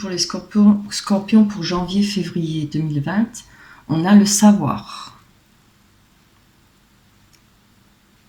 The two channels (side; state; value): both; identical; correlation 1.00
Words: les scorpions pour janvier-février 2020. On a le savoir.